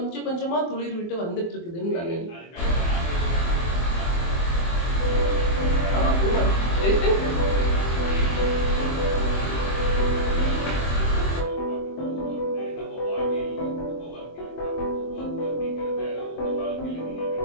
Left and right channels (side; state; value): right; late; 24 ms